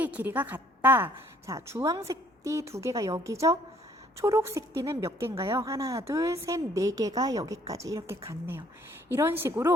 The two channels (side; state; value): both; normal; correlation 0.62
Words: 길이가 같다. 자, 주황색 띠 2개가 여기죠? 초록색 띠는 몇 개인가요? 하나, 둘, 셋, 4개가 여기까지 이렇게 같네요. 이런